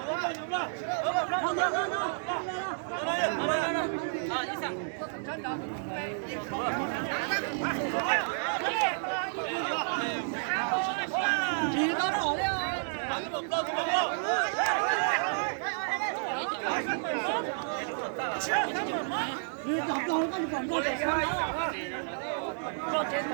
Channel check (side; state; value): left; silent; digital silence